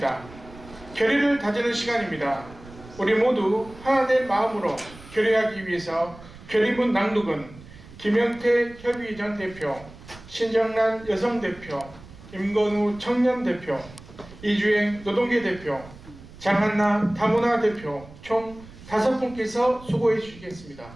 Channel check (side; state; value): right; noise; rumble, 19 dB below the sound